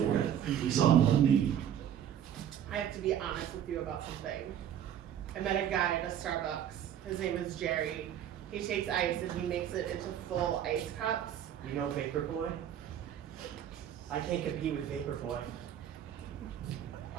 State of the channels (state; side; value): quieter; left; 9.9 dB